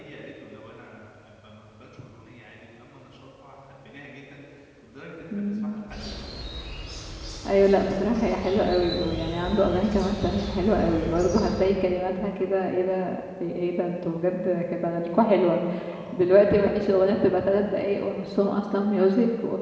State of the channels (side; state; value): both; identical; correlation 1.00